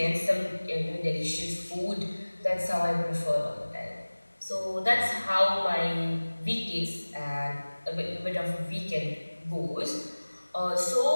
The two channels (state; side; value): inverted; both; correlation -1.00